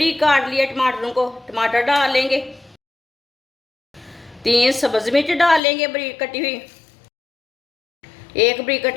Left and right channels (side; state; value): right; drops out; at 5.6 s